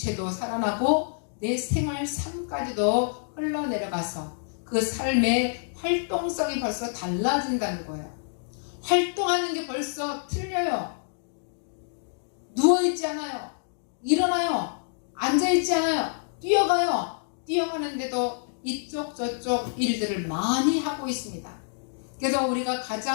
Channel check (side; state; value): right; silent; digital silence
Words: 살아나고 내 생활 삶까지도 흘러내려가서 그 삶의 활동성이 벌써 달라진다는 거예요. 활동하는 게 벌써 틀려요. 누워있지 않아요. 일어나요. 앉아있지 않아요. 뛰어가요. 뛰어가는데도 이쪽 저쪽 일들을 많이 하고 있습니다. 그래서 우리가